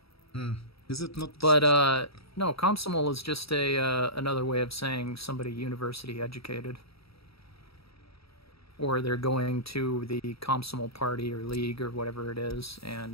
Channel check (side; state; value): right; late; 0.76 ms